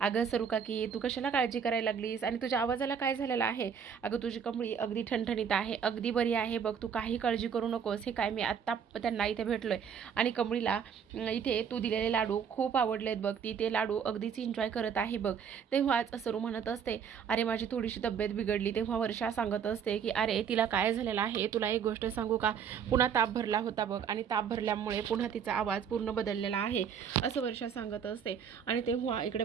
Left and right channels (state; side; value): quieter; left; 7.4 dB